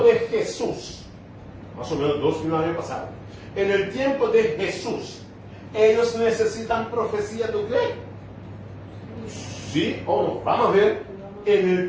Jesús, más o menos 2000 años pasados, en el tiempo de Jesús, ¿ellos necesitan profecía de qué? ¿Sí o no? Vamos a ver, en el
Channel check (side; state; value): both; identical; correlation 1.00